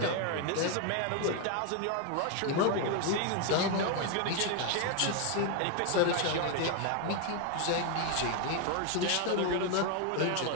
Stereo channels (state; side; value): different; both; correlation 0.01